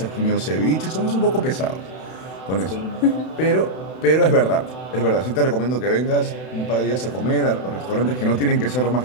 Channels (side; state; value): right; late; 32 ms